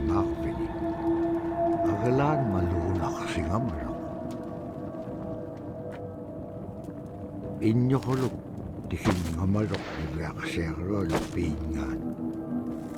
Agalaan maluunaqsingamalaq. Inñoquluk tikinngamaluq iveaksiaqaluallu piingaan.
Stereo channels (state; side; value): identical; both; correlation 1.00